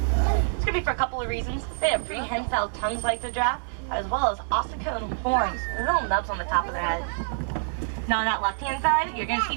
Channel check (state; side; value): silent; left; digital silence